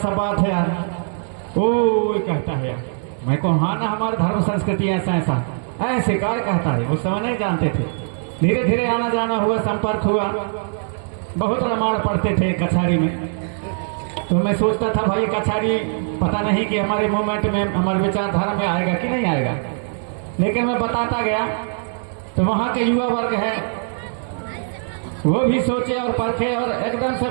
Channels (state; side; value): silent; left; 63 dB below the other